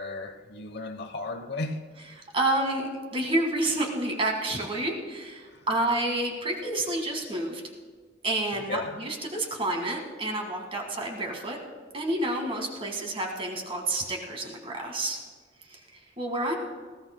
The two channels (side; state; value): both; normal; correlation 0.20